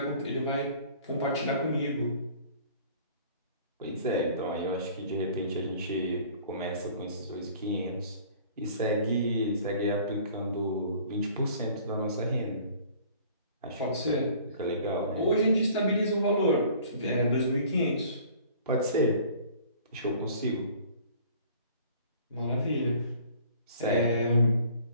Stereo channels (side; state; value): both; inverted; correlation -0.51